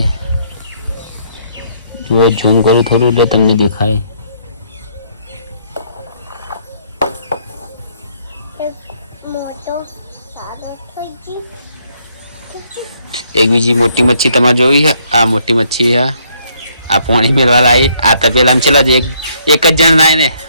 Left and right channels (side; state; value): both; inverted; correlation -0.69